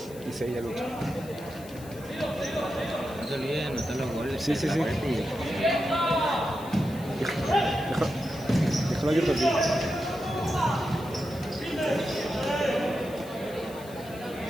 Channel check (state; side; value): noise; left; hiss, 20 dB below the sound